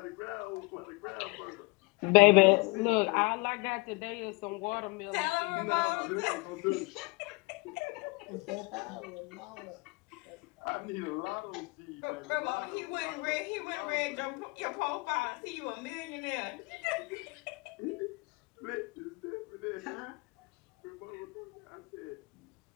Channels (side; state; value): right; quieter; 27.4 dB